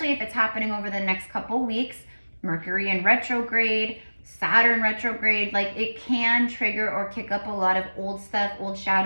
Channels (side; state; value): both; inverted; correlation -1.00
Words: if it's happening over the next couple weeks. Mercury in retrograde, Saturn retrograde, like it can trigger or kick up a lot of old stuff, old